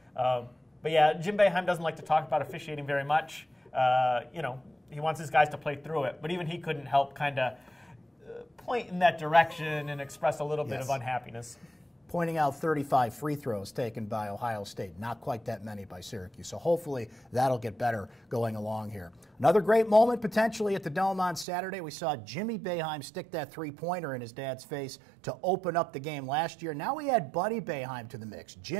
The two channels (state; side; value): drops out; left; at 21.5 s